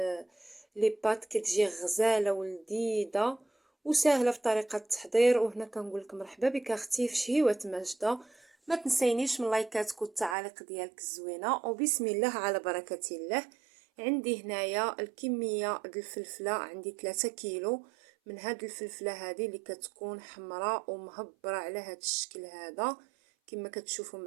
لي بات كتجي غزاله ولذيذه وسهله في طريقه التحضير. وهنا كنقول لك مرحبا بك اختي في شهيوة ماجدة. ما تنسينيش من لايكاتك والتعاليق ديالك الزوينه وبسم الله على بركه الله. عندي هنايا الكميه ديال الفلفله، عندي 3 كيلو من هاد الفلفله هذه اللي كتكون حمراء ومهبره على هاد الشكل هذا كما كتشوفوا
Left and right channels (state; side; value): drops out; left; at 10.4 s